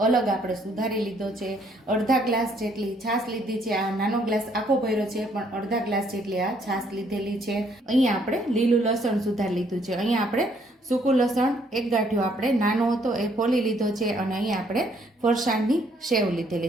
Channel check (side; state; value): both; normal; correlation 0.67